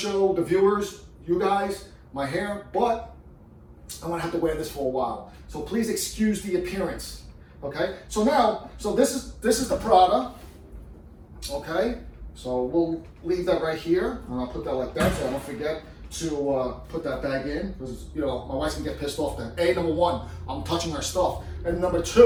the viewers, you guys, my hair, but I'm gonna have to wear this for a while. So please excuse the appearance. Okay. So now, so this is the Prada. Okay. So we'll leave that right here, and I'll put that like that so I don't forget to put that bag in, because you know my wife's gonna get pissed off. That number one, I'm touching her stuff, and number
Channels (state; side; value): identical; both; correlation 1.00